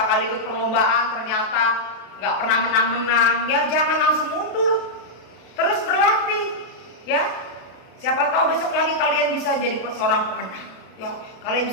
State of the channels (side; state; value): right; late; 32 ms